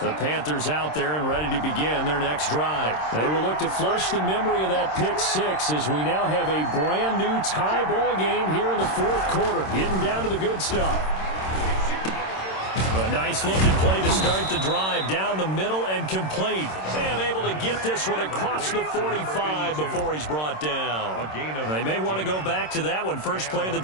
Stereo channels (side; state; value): right; late; 26 ms